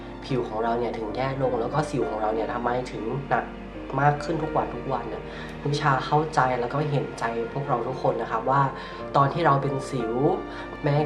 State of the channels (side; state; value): both; identical; correlation 1.00